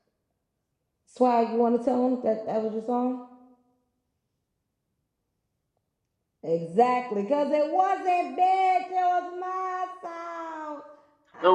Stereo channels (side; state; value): both; identical; correlation 1.00